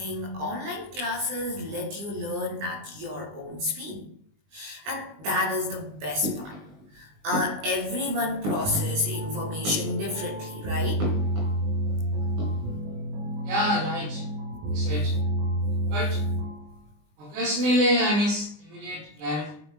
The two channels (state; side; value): late; left; 20 ms